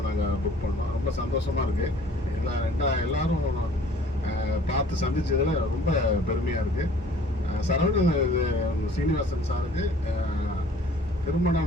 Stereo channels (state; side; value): normal; both; correlation 0.53